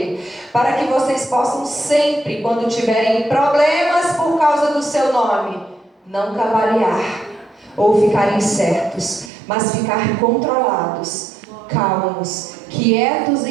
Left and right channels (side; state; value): left; drops out; at 9.3 s